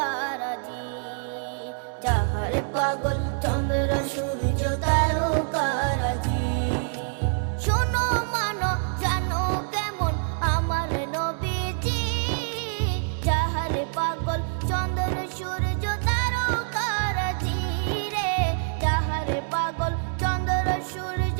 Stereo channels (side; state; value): left; silent; digital silence